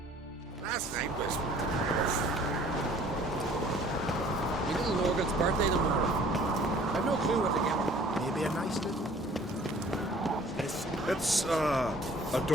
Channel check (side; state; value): both; normal; correlation 0.53